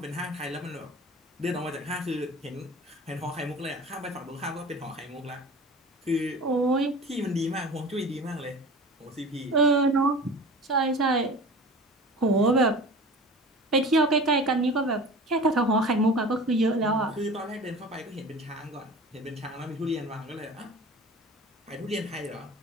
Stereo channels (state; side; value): normal; both; correlation 0.38